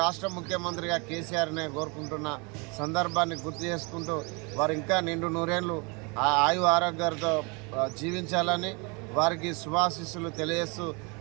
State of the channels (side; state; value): left; quieter; 30.7 dB